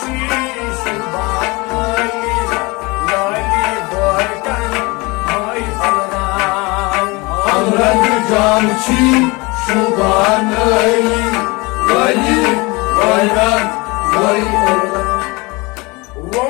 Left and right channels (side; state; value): right; quieter; 25.3 dB